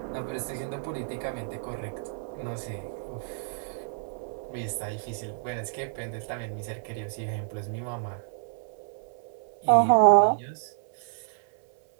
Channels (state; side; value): silent; left; 55 dB below the other